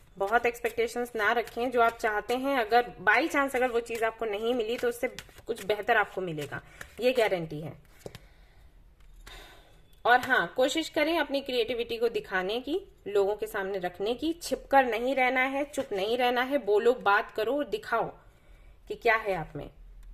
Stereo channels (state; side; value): identical; both; correlation 1.00